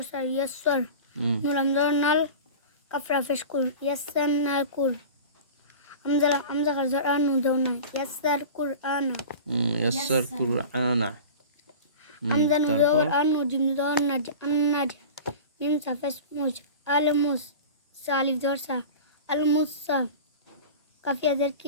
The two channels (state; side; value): inverted; both; correlation -0.35